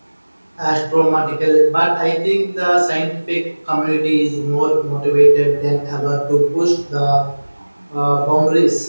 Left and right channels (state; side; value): inverted; both; correlation -1.00